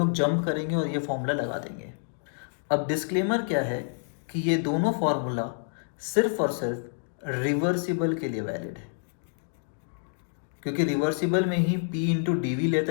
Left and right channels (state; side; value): silent; right; digital silence